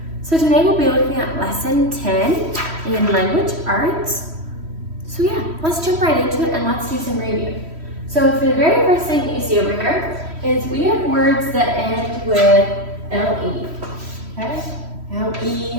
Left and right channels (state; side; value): late; left; 3.1 ms